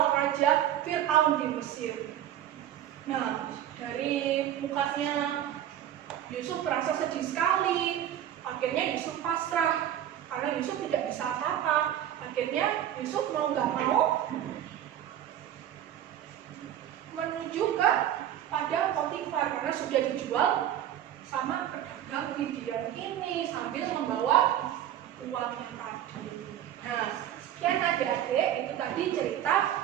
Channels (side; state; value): left; quieter; 11.2 dB